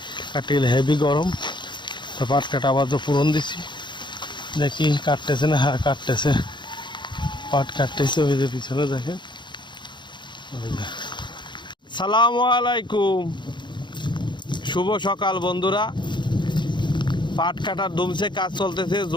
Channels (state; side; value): late; right; 0.22 ms